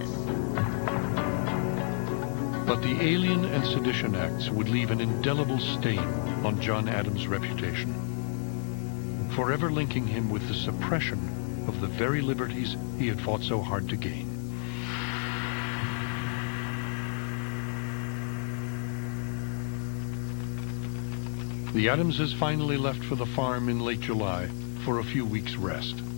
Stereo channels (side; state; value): right; silent; 58 dB below the other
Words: But the Alien and Sedition Acts would leave an indelible stain on John Adams' reputation, forever linking him with the suppression of the very liberties he had fought so hard to gain. The Adamses finally left for the farm in late July for a few weeks' rest.